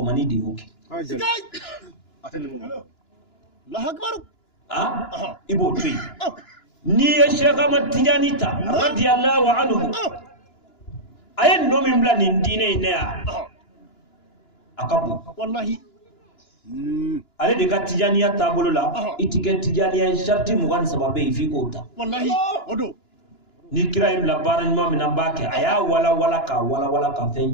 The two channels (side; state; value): right; late; 2.9 ms